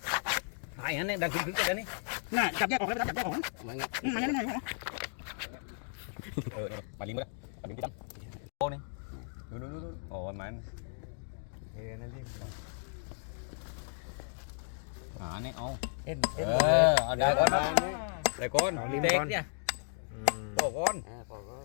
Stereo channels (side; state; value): right; silent; digital silence